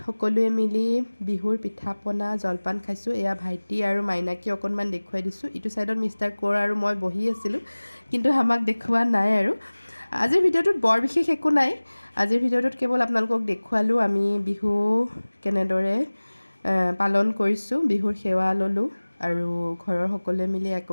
সকলোৱে মিলি বিহুৰ পিঠা পনা জলপান খাইছোঁ। এয়া ভাইটি আৰু মাইনাকে অকণমান দেখুৱাই দিছোঁ। ইটো ছাইডত মিষ্টাৰ কোঁৱৰ আৰু মই বহি আছিলোঁ, কিন্তু আমাক দেখুওৱা নাই। আৰু আজিৰ ভিডিঅ'টোত বৰ বিশেষ একো নাই। আজিৰ ভিডিঅ'টোত কেৱল আপোনালোকক দেখুৱালোঁ আমি বিহু কেনেদৰে পালন কৰিছোঁ, বিহুৰ সেৱা ল'লোঁ আৰু ঘৰৰ সকলোৱে মিলি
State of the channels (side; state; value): both; inverted; correlation -1.00